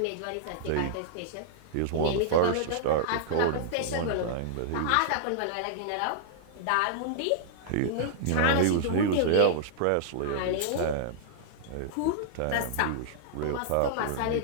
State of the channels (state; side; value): different; both; correlation -0.02